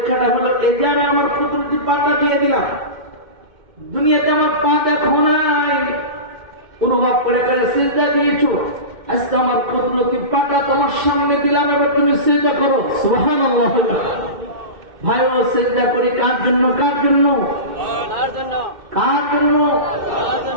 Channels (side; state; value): left; late; 2.1 ms